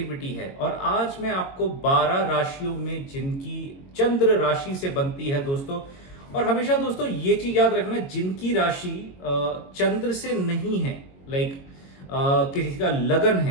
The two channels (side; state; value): right; late; 22 ms